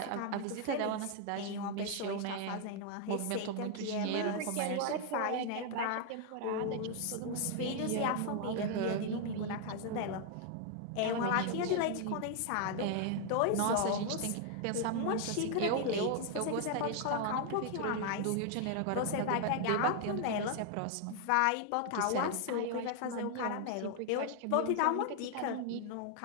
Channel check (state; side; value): different; both; correlation 0.00